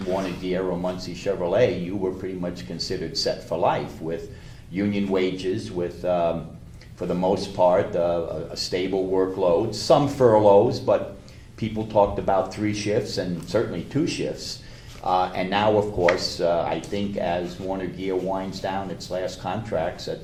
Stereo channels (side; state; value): both; identical; correlation 1.00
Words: Warner Gear or Muncie Chevrolet, you were pretty much considered set for life, with union wages, with, for the most part, a stable workload, some furloughs, but people talked about 3 shifts and certainly 2 shifts. And now, of course, I think as Warner Gear winds down its last contracts at